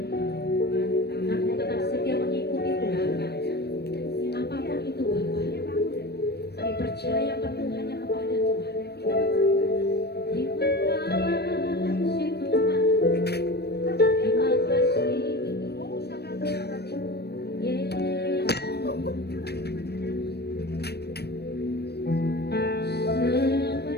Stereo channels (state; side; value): late; right; 0.47 ms